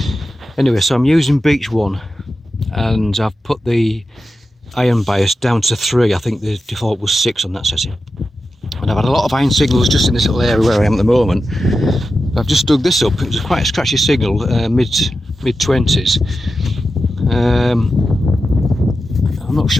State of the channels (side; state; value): both; normal; correlation 0.91